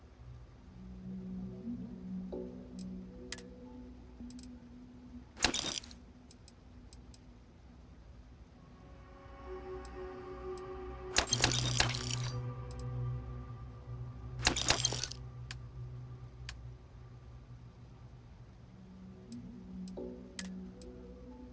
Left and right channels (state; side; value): identical; both; correlation 1.00